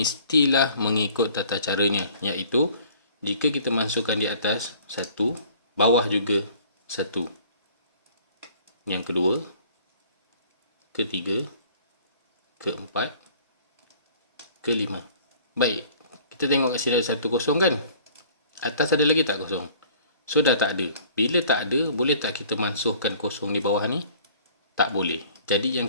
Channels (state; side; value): inverted; both; correlation -0.52